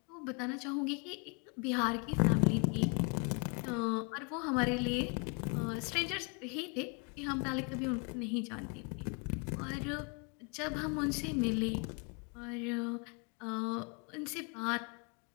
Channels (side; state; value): right; quieter; 35.1 dB